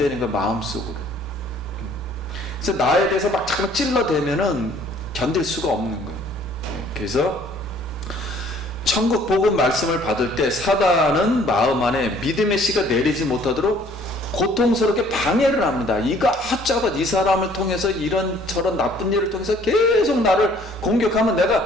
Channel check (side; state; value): both; normal; correlation 0.57